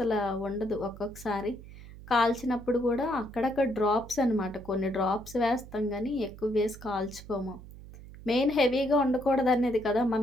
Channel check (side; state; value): right; noise; hum, 16 dB below the sound